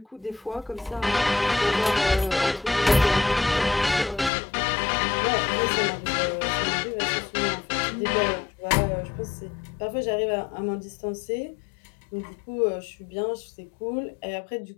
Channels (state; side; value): drops out; right; at 4.3 s